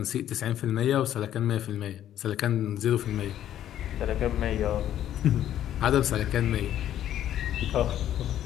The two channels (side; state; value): right; quieter; 11.4 dB